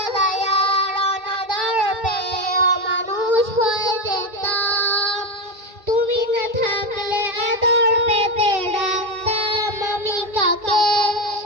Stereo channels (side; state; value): left; late; 2.2 ms